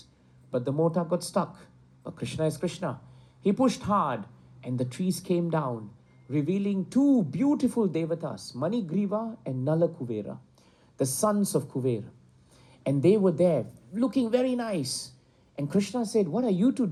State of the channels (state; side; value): identical; both; correlation 1.00